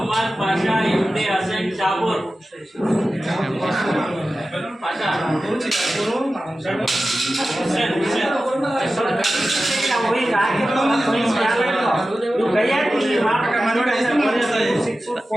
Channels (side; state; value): both; normal; correlation 0.94